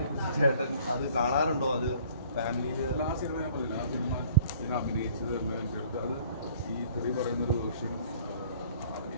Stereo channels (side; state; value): both; inverted; correlation -0.55